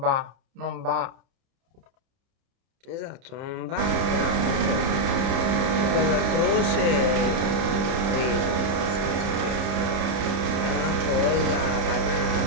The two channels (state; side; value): late; left; 30 ms